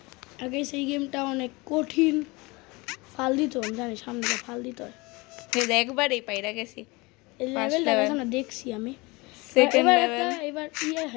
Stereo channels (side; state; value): right; quieter; 24.7 dB